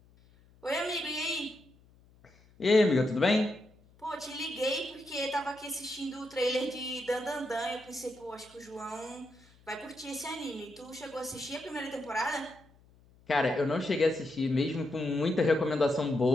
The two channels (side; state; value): left; noise; hum, 28 dB below the sound